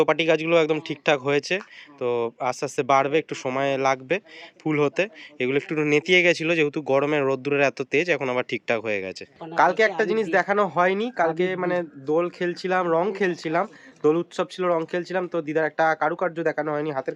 গাছগুলো একদম ঠিকঠাক হয়েছে, তো আস্তে আস্তে বাড়বে, একটু সময় লাগবে ফুল হতে। এগুলো একটু নেতিয়ে গেছিলো যেহেতু গরমের রোদ্দুরের এত তেজ, এখন আবার ঠিকঠাক হয়ে গেছে। কালকে একটা জিনিস দেখানো হয়নি, কালকে মানে দোল খেলছিলাম, রং খেলছিলাম, দোল উৎসব ছিল, রং খেলছিলাম, তো দিদার একটা কারুকার্য দেখানো হয়নি, হাতের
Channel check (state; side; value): identical; both; correlation 1.00